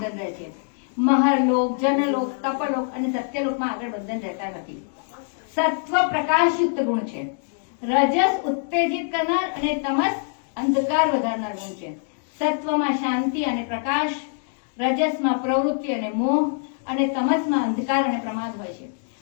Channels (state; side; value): silent; right; 60 dB below the other